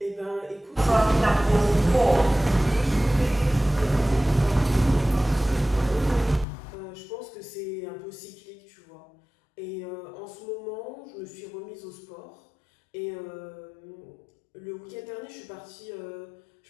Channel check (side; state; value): right; drops out; at 6.5 s